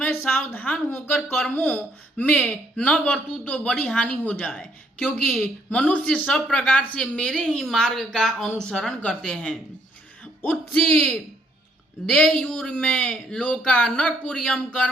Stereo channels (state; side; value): normal; both; correlation 0.68